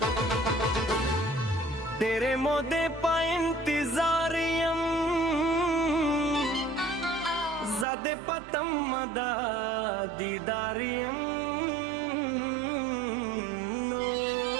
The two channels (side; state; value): left; drops out; at 7.9 s